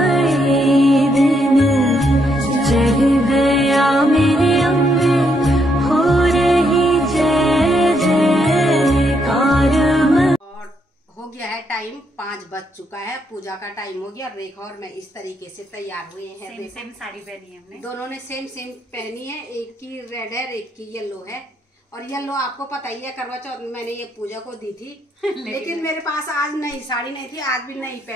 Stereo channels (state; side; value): normal; both; correlation 0.76